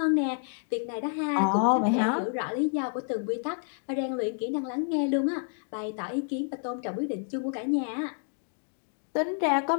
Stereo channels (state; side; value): silent; right; 58 dB below the other